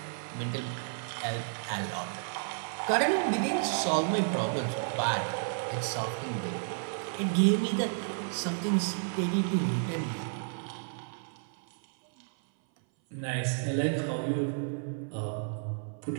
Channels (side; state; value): left; silent; 57 dB below the other